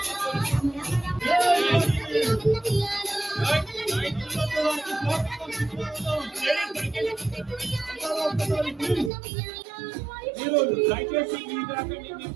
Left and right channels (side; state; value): left; drops out; at 9.1 s